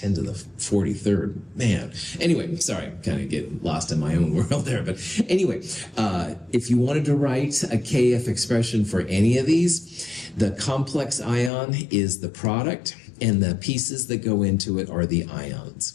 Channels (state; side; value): drops out; right; at 11.5 s